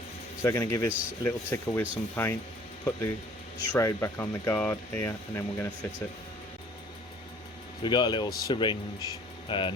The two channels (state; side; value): normal; both; correlation 0.53